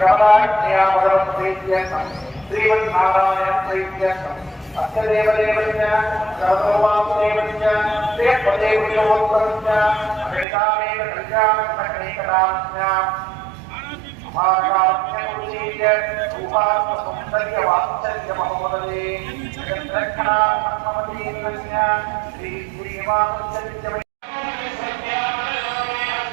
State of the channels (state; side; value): drops out; left; at 10.5 s